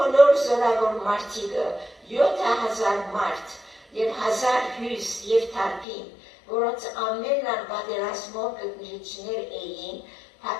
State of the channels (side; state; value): right; drops out; at 5.9 s